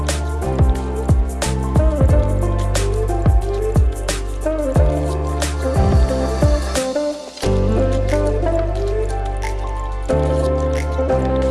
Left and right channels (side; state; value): both; identical; correlation 1.00